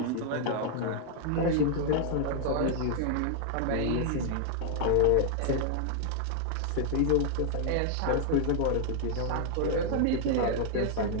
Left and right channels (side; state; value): both; different; correlation -0.01